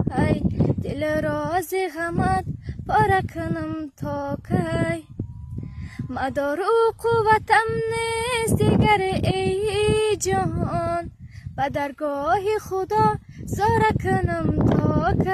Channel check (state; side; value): identical; both; correlation 1.00